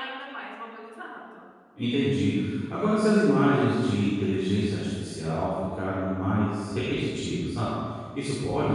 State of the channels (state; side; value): identical; both; correlation 1.00